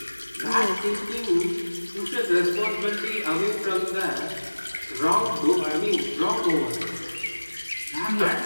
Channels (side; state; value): both; inverted; correlation -1.00